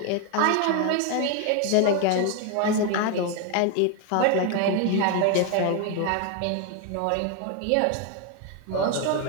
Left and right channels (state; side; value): different; both; correlation 0.01